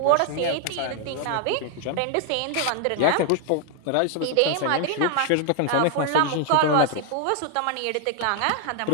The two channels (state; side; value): different; both; correlation 0.00